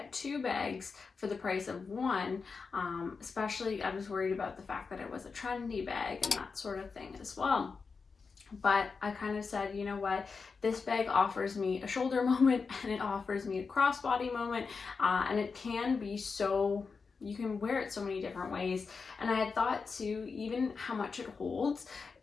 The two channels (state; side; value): quieter; right; 4.9 dB